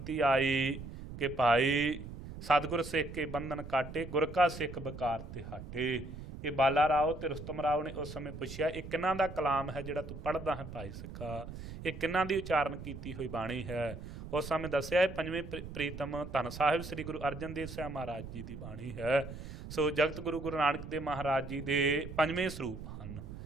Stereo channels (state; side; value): noise; right; rumble, 11 dB below the sound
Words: ਆਈ ਕਿ ਭਾਈ ਸਤਿਗੁਰ ਸਿੱਖ ਕੇ ਬੰਧਨ ਕਾਟੇ, ਗੁਰ ਕਾ ਸਿੱਖ ਵਿਕਾਰ ਤੇ ਹਟੇ, ਇਹ ਬਾਲਾ ਰਾਓ ਤੇ ਰੁਸਤਮ ਰਾਓ ਨੇ ਉਸ ਸਮੇਂ ਪੁੱਛਿਆ ਇਹ ਕਿਹਨਾਂ ਦਾ ਕਲਾਮ ਹੈ ਜਿਹੜਾ ਤੂੰ ਪੜ੍ਹਦਾ ਹੈ ਭਾਈ ਸਿੱਖਾ, ਇਹ ਕਿਹਨਾਂ ਦੀ ਉਚਾਰਨ ਕੀਤੀ ਹੋਈ ਬਾਣੀ ਹੈ। ਉਸ ਸਮੇਂ ਦੱਸਿਆ ਇਹ ਪੰਜਵੇਂ ਪ੍ਰੀਤਮ ਧੰਨ ਸਾਹਿਬ ਸ੍ਰੀ ਗੁਰੂ ਅਰਜਨ ਦੇਵ ਸਾਹਿਬ ਮਹਾਰਾਜ ਜੀ ਦੀ ਬਾਣੀ ਹੈ। ਸੋ ਜਗਤ ਗੁਰੂ ਗੁਰੂ ਨਾਨਕ ਦੇਵ ਮਹਾਰਾਜ ਜੀ ਦੇ ਪੰਜਵੇਂ ਸਰੂਪ ਹਨ।